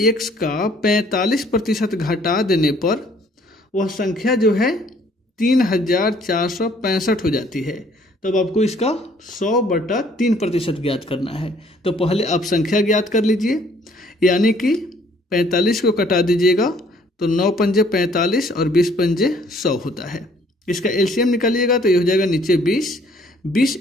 x का 45% घटा देने पर वह संख्या जो है 3465 हो जाती है। तब आपको इसका 100/3% ज्ञात करना है। तो पहले आप संख्या ज्ञात कर लीजिए, यानी कि 45 को कटा दीजिएगा तो 9 पंजे 45 और 20 पंजे 100 होता है। इसका एलसीएम निकालिएगा तो ये हो जाएगा नीचे 20, 20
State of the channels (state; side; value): normal; both; correlation 0.61